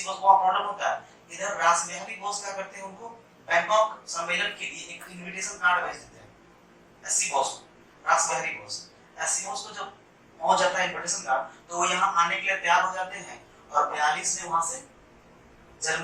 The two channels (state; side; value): identical; both; correlation 1.00